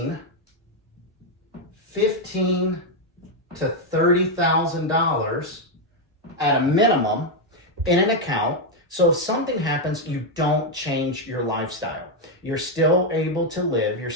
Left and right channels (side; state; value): both; normal; correlation 0.02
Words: $15,000 to $30,000 at a minimum in an account. So if something happens, you don't change your lifestyle. You're still able to live. You're